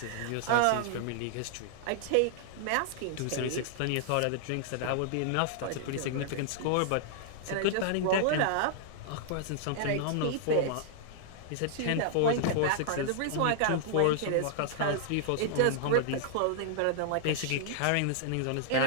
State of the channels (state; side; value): different; both; correlation -0.01